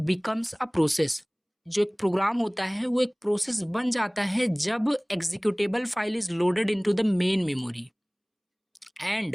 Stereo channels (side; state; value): both; identical; correlation 1.00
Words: बिकम्स अ प्रोसेस, जो एक प्रोग्राम होता है वो एक प्रोसेस बन जाता है जब executable file is loaded into the main memory